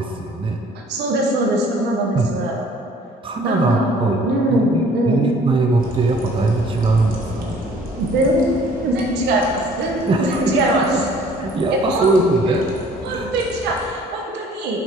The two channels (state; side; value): normal; both; correlation 0.55